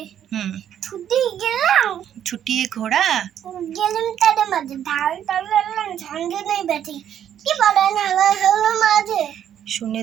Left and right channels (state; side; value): quieter; left; 10.0 dB